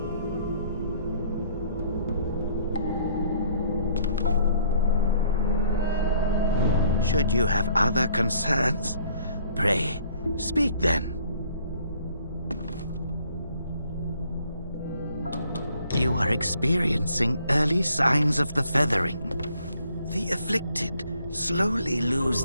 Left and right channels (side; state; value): both; inverted; correlation -0.63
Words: Should you have other concerns, pray, speak then. You are experiencing early signs of the feathering. The afflicted slowly lose